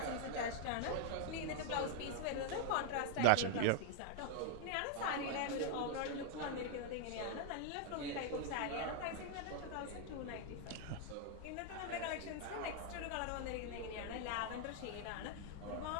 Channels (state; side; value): different; both; correlation 0.00